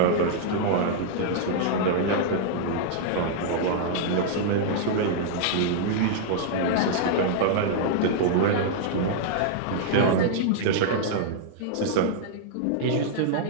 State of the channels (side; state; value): both; different; correlation -0.01